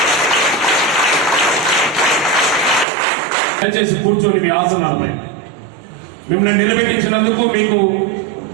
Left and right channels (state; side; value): drops out; left; at 2.9 s